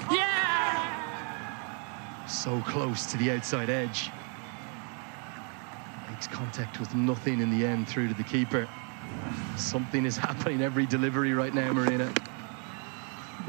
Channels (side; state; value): left; quieter; 39.3 dB